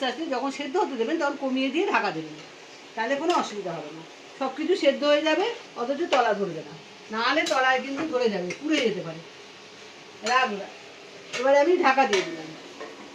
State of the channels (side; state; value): both; identical; correlation 1.00